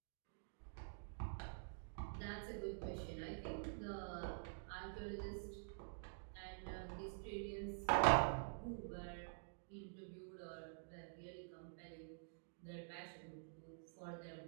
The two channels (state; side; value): silent; left; digital silence